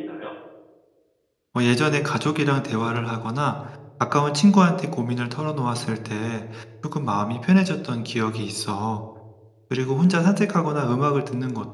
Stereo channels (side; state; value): both; identical; correlation 1.00